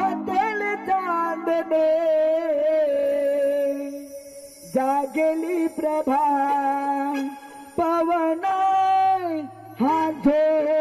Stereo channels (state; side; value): identical; both; correlation 1.00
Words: चांदणे जागेली प्रभा पवन हा